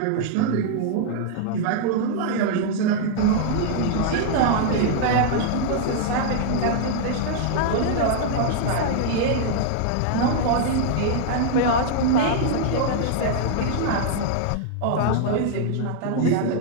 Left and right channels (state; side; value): different; both; correlation -0.01